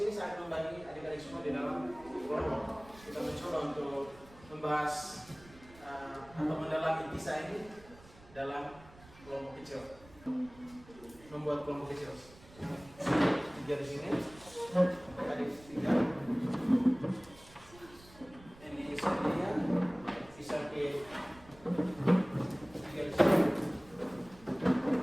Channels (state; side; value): noise; right; rumble, 22 dB below the sound